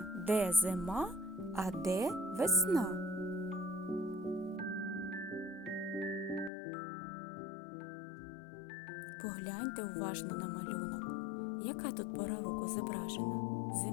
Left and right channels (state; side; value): drops out; right; at 6.5 s